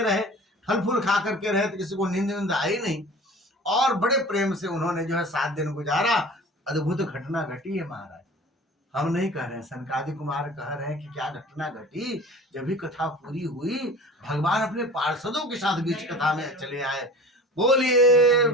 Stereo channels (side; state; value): both; normal; correlation 0.41